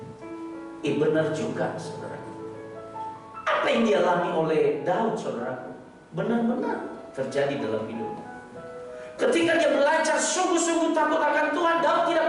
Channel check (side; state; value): both; identical; correlation 1.00